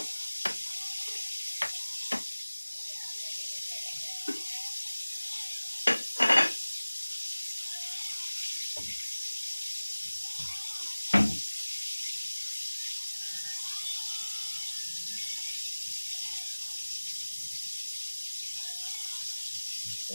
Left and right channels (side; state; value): both; inverted; correlation -1.00